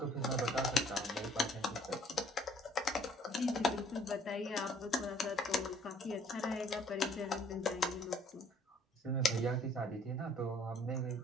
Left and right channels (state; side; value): normal; both; correlation 0.59